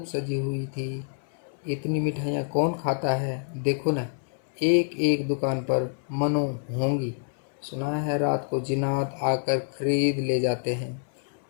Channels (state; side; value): silent; right; 60 dB below the other